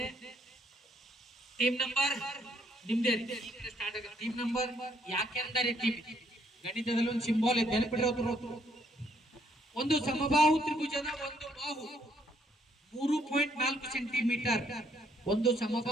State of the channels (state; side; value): normal; both; correlation 0.70